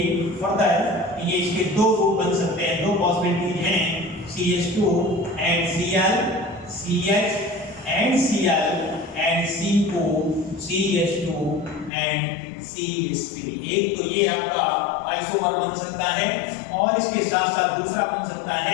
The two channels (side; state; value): right; drops out; at 11.9 s